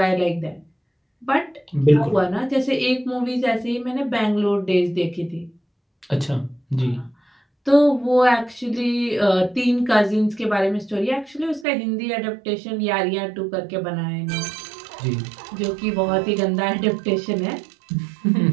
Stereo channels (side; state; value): left; drops out; at 11.7 s